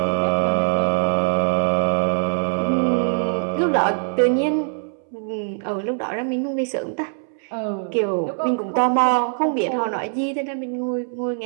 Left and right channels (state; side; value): silent; left; 64 dB below the other